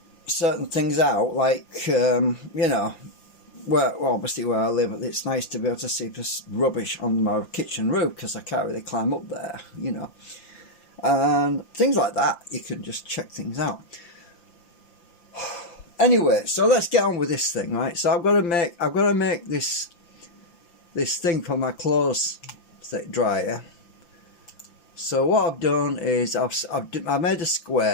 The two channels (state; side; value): late; right; 5.9 ms